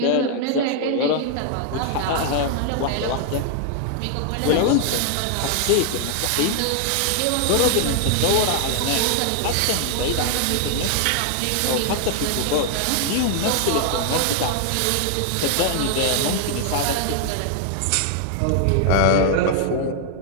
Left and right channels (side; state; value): both; different; correlation 0.00